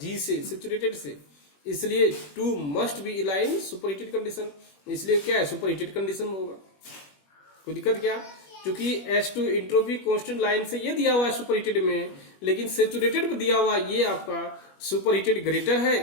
से, सेचुरेटेड से, इसलिए 2 must be align superheated condition, इसलिए क्या है सुपरहीटेड कंडीशन में होगा। कोई दिक्कत क्या, क्योंकि S2 इंट्रोपी कांस्टेंट लाइन से ये दिया हुआ है सुपरहीटेड में, लेकिन सेचुरेटेड पे दिया हुआ ये आपका सुपरहीटेड ग्रेटर है,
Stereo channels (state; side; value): late; right; 21 ms